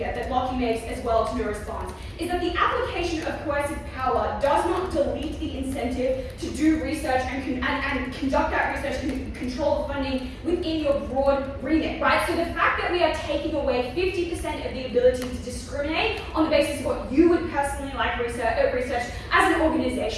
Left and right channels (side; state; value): both; identical; correlation 1.00